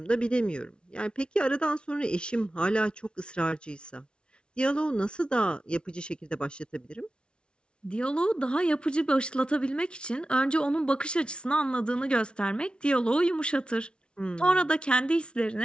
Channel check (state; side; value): late; right; 0.057 ms